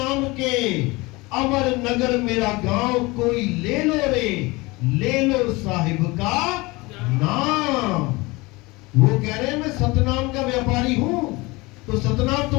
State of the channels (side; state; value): right; quieter; 23.4 dB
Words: के, अमर नगर मेरा गांव, कोई ले लो रे, ले लो साहिब का नाम। वो कह रहे हैं मैं सतनाम का व्यापारी हूं। तो सतनाम